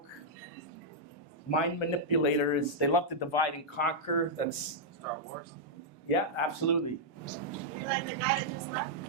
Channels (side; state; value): both; normal; correlation -0.07